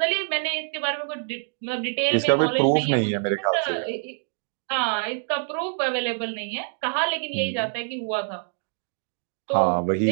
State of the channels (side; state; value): left; silent; 58 dB below the other